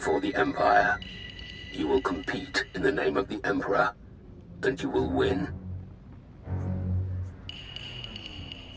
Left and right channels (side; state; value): both; identical; correlation 1.00